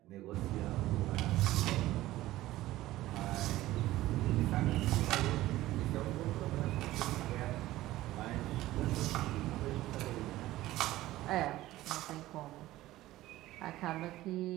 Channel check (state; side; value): quieter; left; 16.1 dB